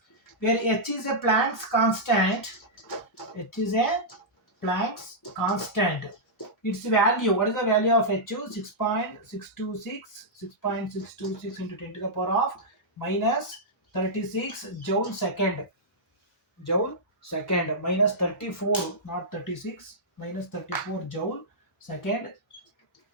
where h is a Planck's constant. H is a Planck's constant. Its value, what is the value of H? 6.626, 6.626 into 10 to the power of minus 36 joule second. Joule second minus 34, not 36, minus 34 joule second.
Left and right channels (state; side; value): normal; both; correlation -0.10